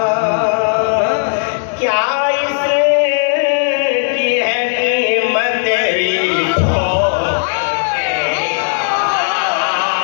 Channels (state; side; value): silent; right; digital silence